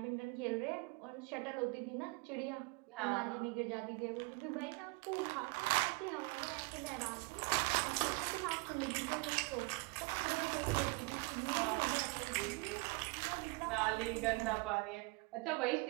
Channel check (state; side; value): quieter; left; 28.0 dB